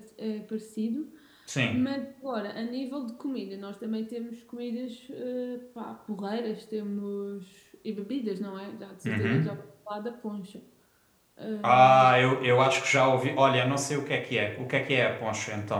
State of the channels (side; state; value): both; identical; correlation 1.00